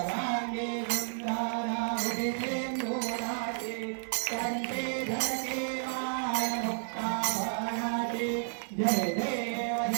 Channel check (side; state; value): left; silent; digital silence